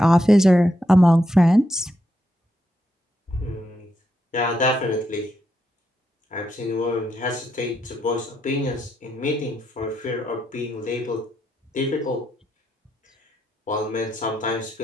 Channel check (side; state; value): both; normal; correlation 0.81